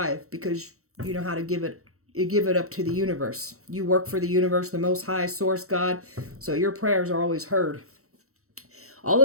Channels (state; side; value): late; left; 0.64 ms